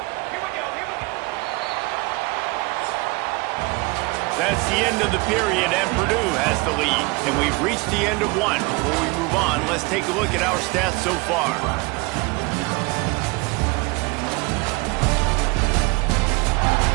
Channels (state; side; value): quieter; left; 26.6 dB